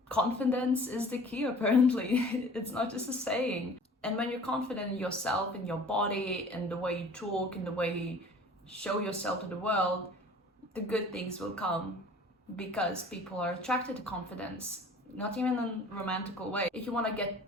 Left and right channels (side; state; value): both; normal; correlation 0.47